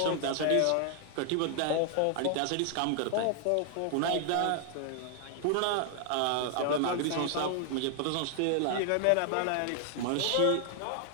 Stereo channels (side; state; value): both; different; correlation 0.00